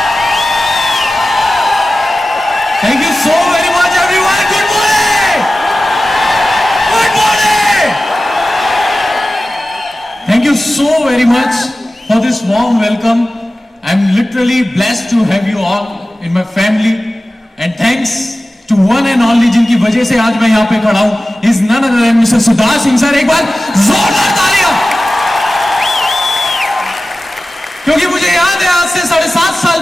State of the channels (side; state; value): both; normal; correlation 0.95